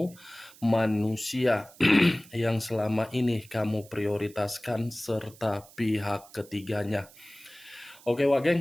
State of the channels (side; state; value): right; noise; hiss, 23 dB below the sound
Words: manusia yang selama ini kamu prioritaskan, serta pihak ketiganya. Oke, Wak